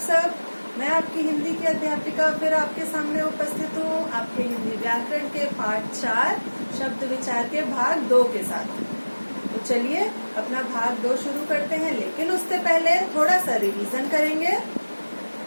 मैं आपकी हिंदी की अध्यापिका फिर आपके सामने उपस्थित हूँ आपके हिंदी व्याकरण के पाठ 4 शब्द विचार के भाग 2 के साथ। तो चलिए अपना भाग 2 शुरू करते हैं, लेकिन उससे पहले थोड़ा सा रिवीजन करेंगे।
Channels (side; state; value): both; inverted; correlation -1.00